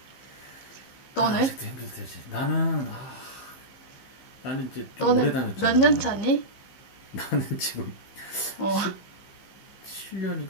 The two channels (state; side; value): late; right; 15 ms